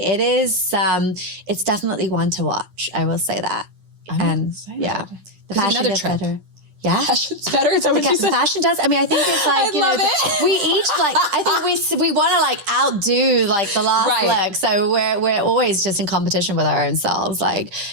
It is, it's definitely one to watch. I will say that. I'm excited. Yeah. The fashion gets better. Yeah. Fashion's better. Is that what you said? The fashion does. I mean, I think it's like, we each I think we want to outdo the last look. So we're always just in competition with our own selves. Like,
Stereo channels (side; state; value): left; late; 10 ms